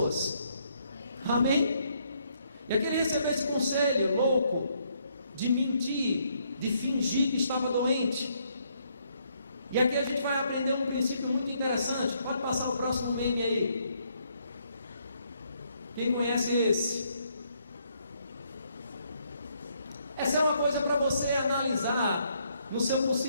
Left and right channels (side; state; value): both; inverted; correlation -0.71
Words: Amém? E aquele recebeu esse conselho louco de mentir, de fingir que estava doente. E aqui a gente vai aprender um princípio muito interessante. Pode passar o próximo meme aí. Quem conhece esse? Essa é uma coisa para você analisar no seu